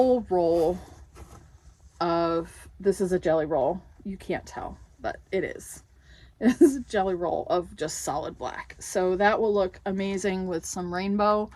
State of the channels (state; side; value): identical; both; correlation 1.00